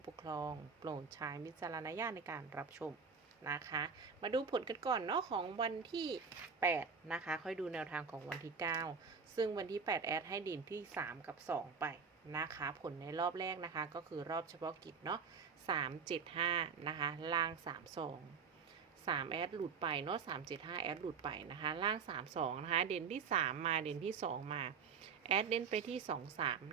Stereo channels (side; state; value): left; quieter; 5.7 dB